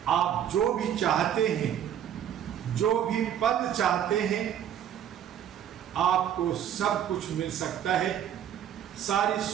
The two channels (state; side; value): quieter; left; 9.8 dB